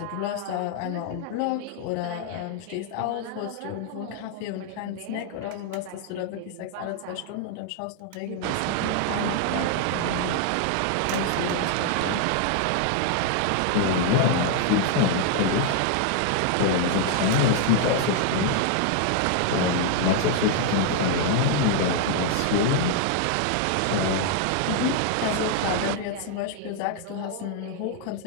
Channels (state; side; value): different; both; correlation 0.00